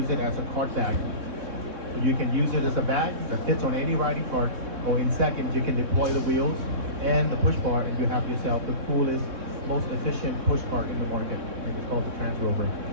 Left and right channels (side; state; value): left; late; 3.6 ms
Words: it as a cart bag. You can use it as a bag that fits on any riding cart, or in seconds you can deploy the wheels and the push bar, and you have yourself the coolest, most efficient push cart in the market, and it's called the Transrover.